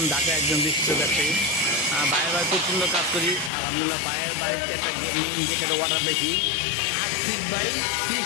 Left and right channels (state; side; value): drops out; right; at 3.5 s